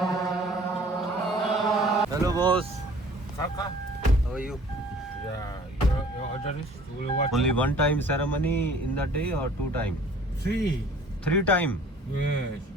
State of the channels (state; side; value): normal; both; correlation 0.51